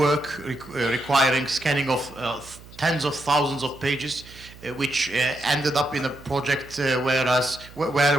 requiring scanning of tens of thousands of pages, which ended up in a project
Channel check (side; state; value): right; noise; hum, 20 dB below the sound